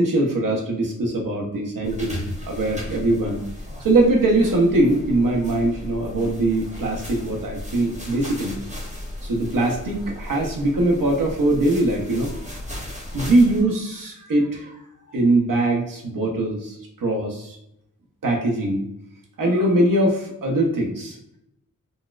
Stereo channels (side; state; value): both; normal; correlation 0.56